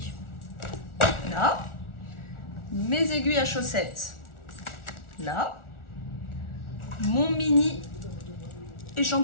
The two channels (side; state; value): right; late; 1.4 ms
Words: Là. Mes aiguilles à chaussettes. Là. Mon mini